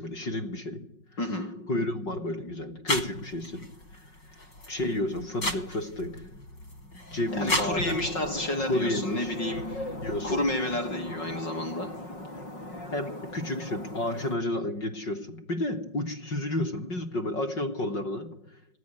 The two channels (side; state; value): right; late; 5.5 ms